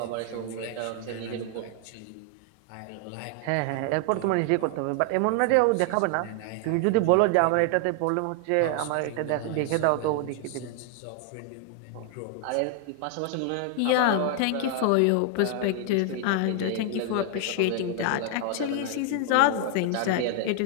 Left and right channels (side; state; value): both; different; correlation 0.00